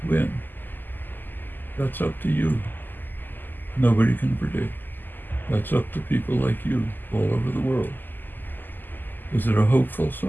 win? That's up to you. Nobody can predict. That's up to people like you all over the world. Is it a hopeful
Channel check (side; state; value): right; late; 0.089 ms